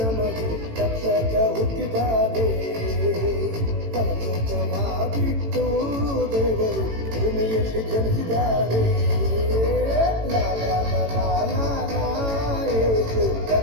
ರಕ್ಷಕ ಹುಟ್ಟಿದ್ದಾನೆ. ಪರಲೋಕವ ಬಿಟ್ಟು ದೇವರು ಭೂಮಿಯಲ್ಲಿ ಜನಿಸಿದ್ದಾನೆ. ಲಾ ಲಾ ಲಾ ಲಾ ಲಾ ಲಾ, ಯೇಸು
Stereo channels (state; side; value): late; left; 18 ms